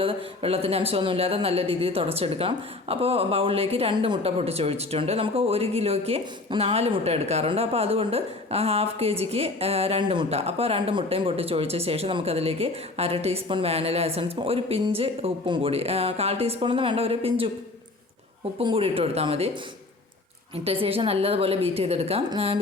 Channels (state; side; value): quieter; right; 3.2 dB